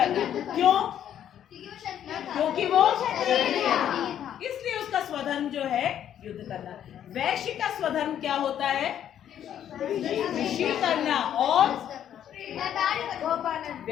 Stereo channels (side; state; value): right; quieter; 10.2 dB